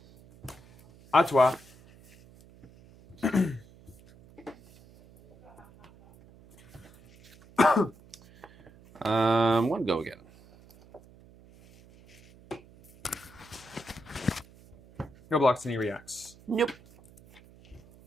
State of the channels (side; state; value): right; noise; hum, 24 dB below the sound